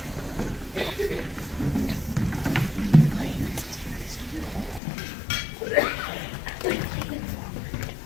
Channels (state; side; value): drops out; right; at 4.8 s